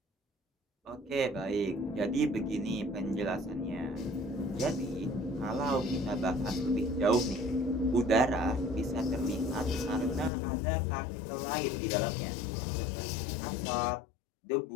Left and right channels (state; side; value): drops out; right; at 10.3 s